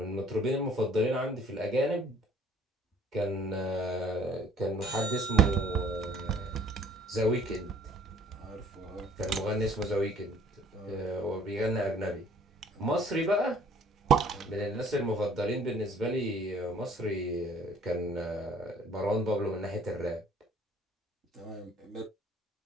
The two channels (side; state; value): both; normal; correlation 0.56